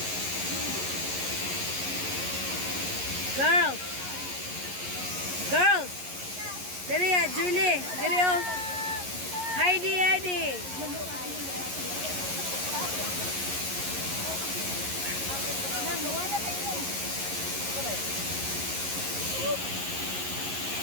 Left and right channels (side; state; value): left; late; 11 ms